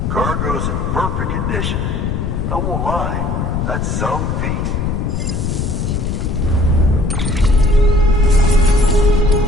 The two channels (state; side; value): noise; left; rumble, 1 dB below the sound